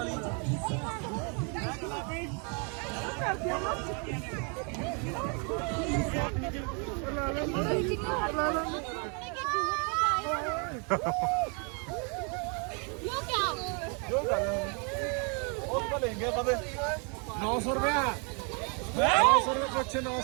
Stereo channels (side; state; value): left; quieter; 36.7 dB